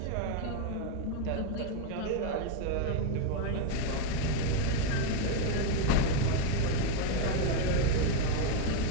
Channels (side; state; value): both; different; correlation 0.02